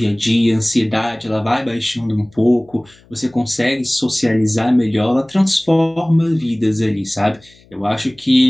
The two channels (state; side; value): noise; left; hum, 29 dB below the sound